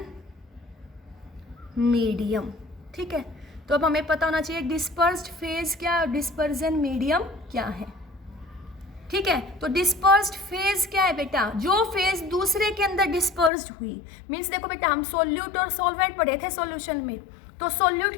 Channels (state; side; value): drops out; right; at 13.5 s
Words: मीडियम, ठीक है। तो अब हमें पता होना चाहिए डिस्पर्स्ड फेज क्या और डिस्पर्जन मीडियम क्या है, ठीक है। तो डिस्पर्स्ड फेज क्या है बेटा? जो फेज दूसरे के अंदर डिस्पर्स्ड हुई। मीन्स देखो बेटा हम सोल्यूट और सॉल्वेंट पढ़े थे सॉल्यूशन में, तो सोल्यूट